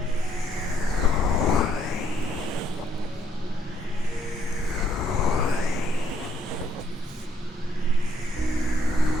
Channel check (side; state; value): both; normal; correlation 0.69